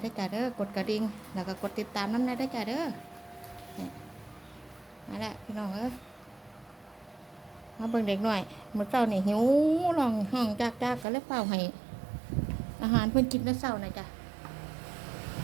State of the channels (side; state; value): left; drops out; at 11.1 s